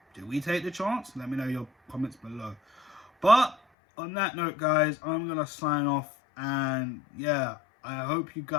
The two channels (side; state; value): right; drops out; at 3.6 s